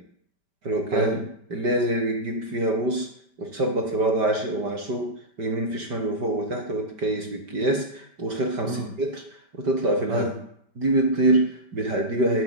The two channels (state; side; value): late; left; 5.2 ms